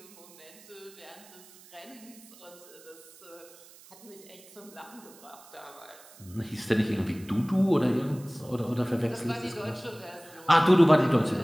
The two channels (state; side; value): noise; right; hiss, 22 dB below the sound